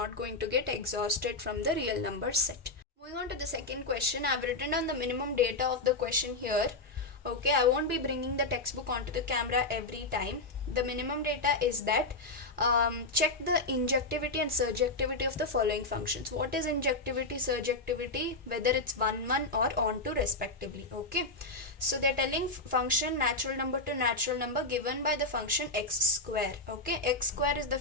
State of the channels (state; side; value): quieter; right; 3.2 dB